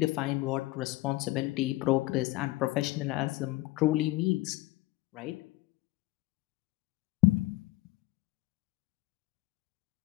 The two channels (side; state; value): right; quieter; 19.4 dB